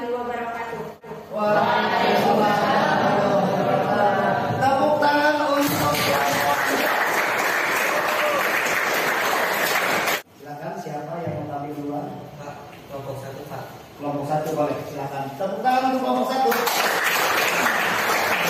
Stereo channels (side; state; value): both; identical; correlation 1.00